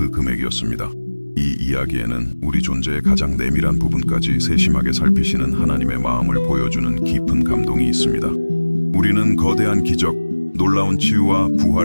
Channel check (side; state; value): both; inverted; correlation -1.00